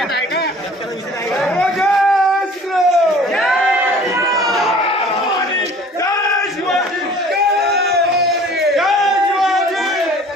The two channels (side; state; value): both; normal; correlation 0.49